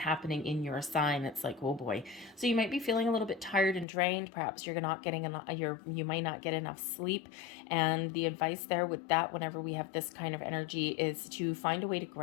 in your sign, it's like, oh boy. So you might be feeling a little bit tired and drained. Perhaps you're not getting enough, you might not get enough sleep. And the advice there with that, whenever we have this kind of energy, is to find a way to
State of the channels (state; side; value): drops out; right; at 3.9 s